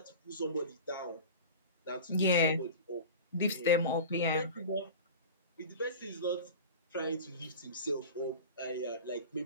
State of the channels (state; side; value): inverted; both; correlation -0.33